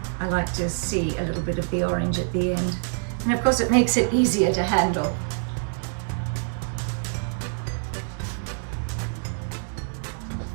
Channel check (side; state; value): left; silent; digital silence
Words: I like to see a little bit of the orange at the end. And of course it makes it easier to handle.